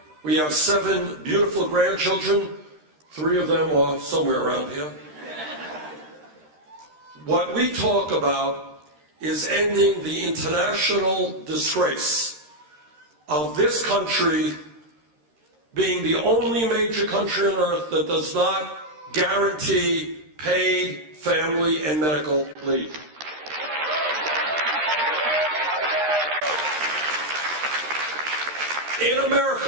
We have 7 beautiful grandchildren. 3 of them are somewhere around here. What we talk about is ending the international disgrace of this country being the only major country on earth that does not guarantee paid family and medical leave. In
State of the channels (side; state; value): left; late; 13 ms